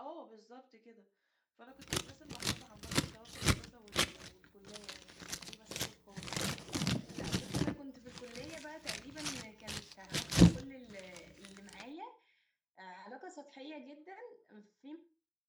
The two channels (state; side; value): identical; both; correlation 1.00